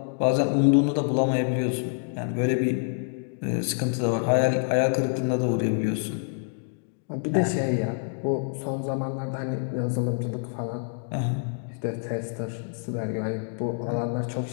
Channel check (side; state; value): right; silent; digital silence